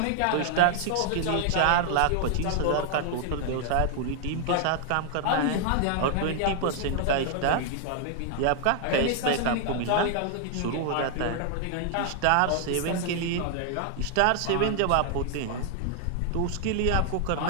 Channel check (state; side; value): different; both; correlation 0.00